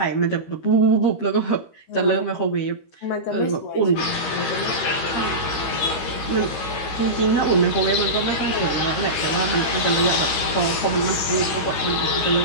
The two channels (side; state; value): right; late; 13 ms